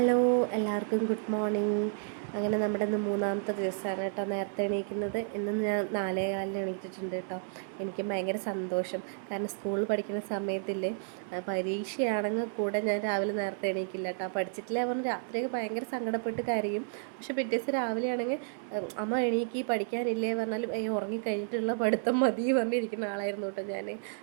എല്ലാവർക്കും ഗുഡ് മോർണിംഗ്. അങ്ങനെ നമ്മുടെ ഇന്ന് മൂന്നാമത്തെ ദിവസമാണ് കേട്ടോ നേരത്തെ എണീക്കുന്നത്. ഇന്ന് ഞാൻ 4:15 എണീറ്റിട്ടുണ്ട് കേട്ടോ. എനിക്ക് ഭയങ്കര സന്തോഷം. കാരണം സ്കൂളിൽ പഠിക്കുന്ന സമയത്തില്ലേ, പരീക്ഷയാണെങ്കിൽ കൂടെ ഞാൻ രാവിലെ നേരത്തെ എണീക്കില്ല കേട്ടോ. പഠിച്ചിട്ടില്ല പറഞ്ഞ് രാത്രിയൊക്കെ ഭയങ്കര സങ്കടപ്പെട്ട് കരയും. പക്ഷെ പിറ്റേ ദിവസം രാവിലെ ആണെങ്കിൽ അമ്മ എണീക്കി പഠിക്കാനില്ലേ പറഞ്ഞാലും ഉറങ്ങിക്കഴിഞ്ഞിട്ടുള്ള പഠിത്തം മതി പറഞ്ഞിരിക്കുന്ന ആളായിരുന്നു കേട്ടോ ഞാൻ.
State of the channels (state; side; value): silent; left; 57 dB below the other